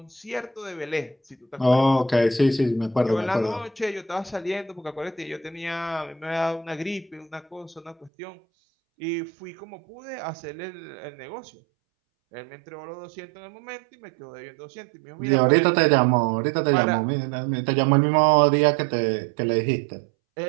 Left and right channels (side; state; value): left; drops out; at 8.1 s